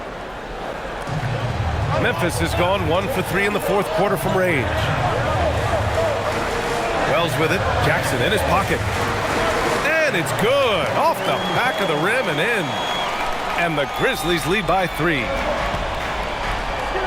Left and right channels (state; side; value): identical; both; correlation 1.00